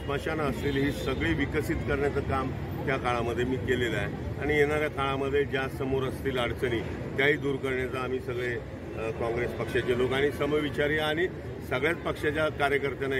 असतील, ही सगळी विकसित करण्याचं काम त्या काळामध्ये मी केलेलं आहे. आणि येणाऱ्या काळामध्ये ज्या समोर असतील अडचणी त्याही दूर करण्याचा आम्ही सगळे काँग्रेस पक्षाचे लोक आणि समविचारी आणि सगळ्याच पक्षाच्या कार्यकर्त्यांना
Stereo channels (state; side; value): identical; both; correlation 1.00